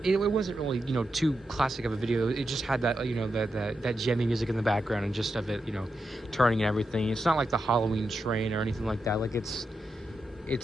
wasn't really, you know, too classic of a video. It just had that, you know, that Gemmy music in the background, and just of it, you know, turning and everything. It's not like the Halloween train or anything like that. Like, it's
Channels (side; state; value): both; normal; correlation 0.87